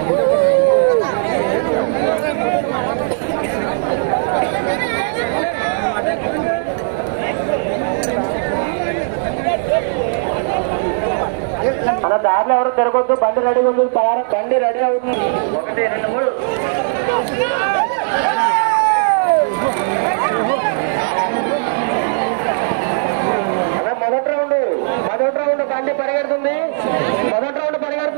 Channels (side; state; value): left; silent; digital silence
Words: మన దారిలో ఎవరు తిరగొద్దు. బండి రెడీగా ఉంది, బండి రెడీ అవుతుంది. 1, 2, 3 మొదటి రౌండ్ బండి పరిగెడుతుంది. మొదటి రౌండ్